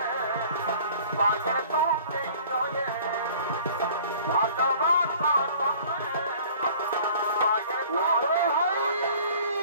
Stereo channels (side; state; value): both; inverted; correlation -0.50